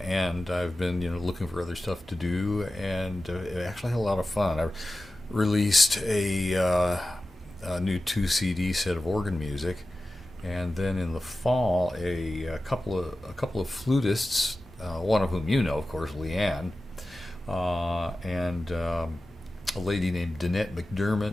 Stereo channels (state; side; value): normal; both; correlation 0.95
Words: and I've been looking for other stuff to do, and it actually had a lot of fun. I released a new 2 CD set of organ music, and then in the fall a couple of flutists, one of whom of course, Leanne, and a lady named Danette